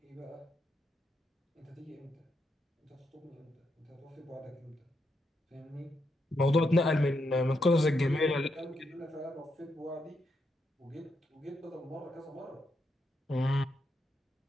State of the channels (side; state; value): both; normal; correlation 0.81